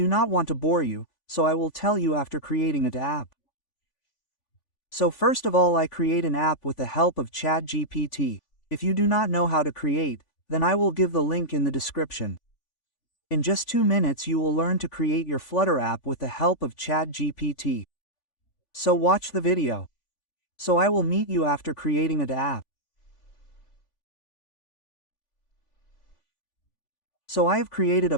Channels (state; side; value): late; right; 3.5 ms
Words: not want to bore you, so I will tell you after creating an app. So first of all I create an app with the help of ChatGPT. If you do not know how to create, then I will give the link in the description. In just 2 minutes you will learn to create your Flutter app with the help of ChatGPT. So watch the video. So I will meet you after creating an app. So I have created a